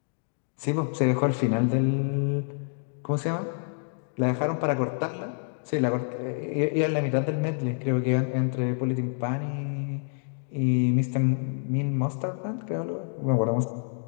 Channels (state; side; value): silent; right; digital silence